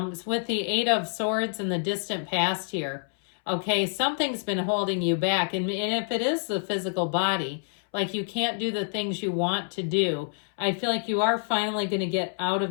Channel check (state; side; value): silent; right; 60 dB below the other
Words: with the Eight of Swords in the distant past here, okay, something's been holding you back. And if it is the physical body, like you can't do the things you want to do, I feel like you are finally going to get out